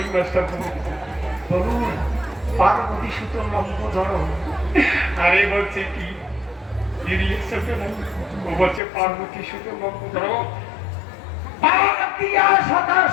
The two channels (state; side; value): drops out; right; at 8.8 s